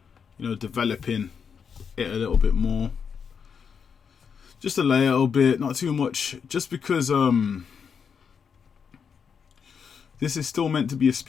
you know, developing it a little bit more. Just a little bit, not too much, just because this is still meant to be a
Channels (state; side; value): quieter; right; 6.6 dB